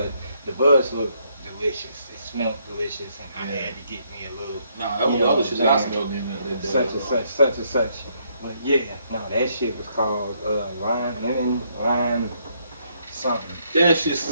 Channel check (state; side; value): inverted; both; correlation -0.72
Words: the buds look delicious. It smelled delicious, and I had to get me a little. Nah, that was the other shit that I smelled in there. Such and such. But yeah, no, that shit was called lime something. That shit